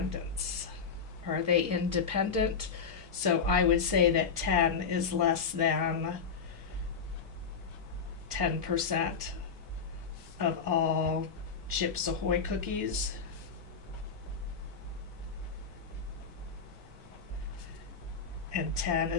Are they independent? So I would say that 10 is less than 10% of all Chips Ahoy cookies. And 10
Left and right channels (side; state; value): right; quieter; 5.8 dB